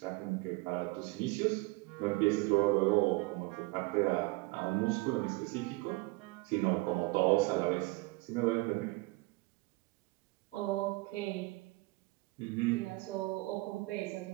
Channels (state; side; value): quieter; left; 24.2 dB